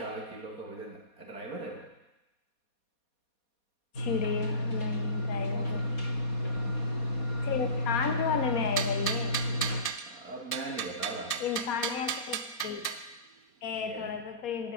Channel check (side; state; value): right; late; 4.2 ms